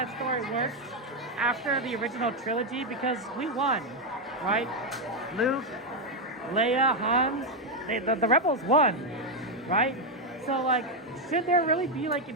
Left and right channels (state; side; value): normal; both; correlation 0.03